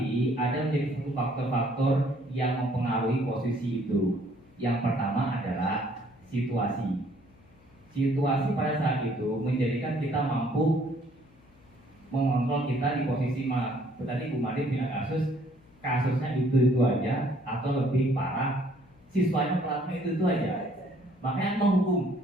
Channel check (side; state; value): left; noise; hum, 28 dB below the sound